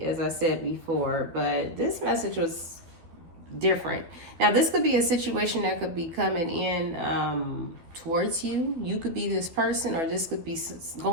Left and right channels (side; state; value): left; late; 12 ms